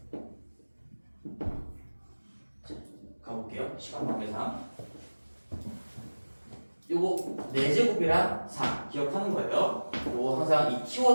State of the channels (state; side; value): inverted; both; correlation -1.00